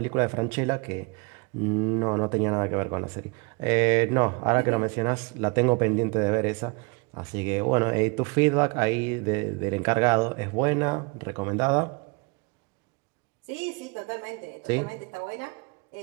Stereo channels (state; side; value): quieter; left; 29.6 dB